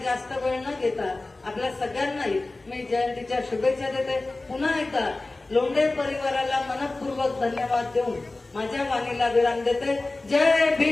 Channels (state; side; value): quieter; right; 3.1 dB